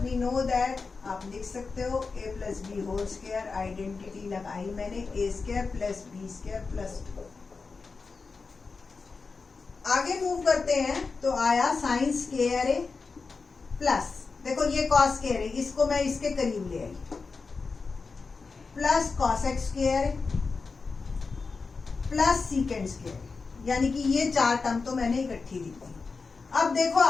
नो दैट, आप लिख सकते हो a plus b whole square identity लगाई मैंने, a square plus b square plus 2। आगे मूव करते हैं, तो आया साइन स्क्वायर ए प्लस, देखो ये कॉस स्क्वायर है, इसको मैं इसके करीब ले आई, plus cosec square plus secant square, यानी कि ये 4 टर्म तो मैंने इकट्ठी दी थी। अब देखो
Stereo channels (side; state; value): right; quieter; 4.5 dB